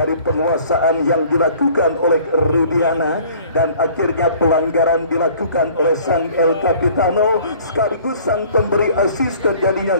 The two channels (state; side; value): inverted; both; correlation -0.52